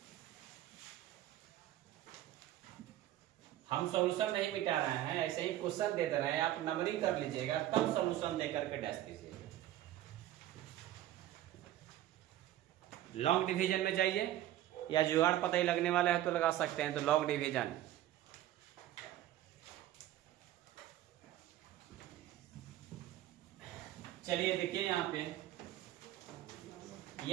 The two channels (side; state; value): left; quieter; 13.4 dB